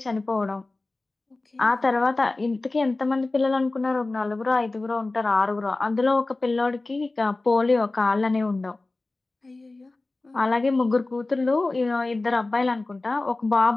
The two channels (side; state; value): right; quieter; 3.2 dB